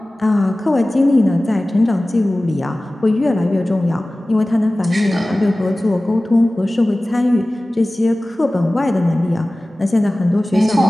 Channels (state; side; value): normal; both; correlation 0.97